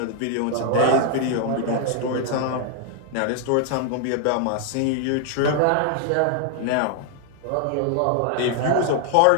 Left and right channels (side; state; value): both; different; correlation 0.00